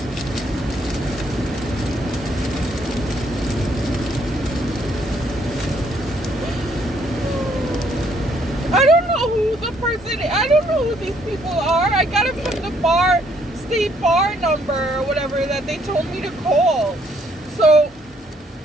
I don't know who the person is. I don't know who these people are. I got it from the state bar number or whatever that they told me to call. So,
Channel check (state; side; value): normal; both; correlation 0.68